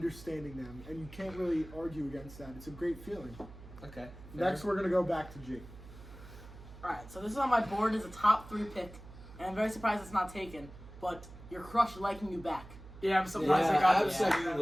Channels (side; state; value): right; noise; hum, 16 dB below the sound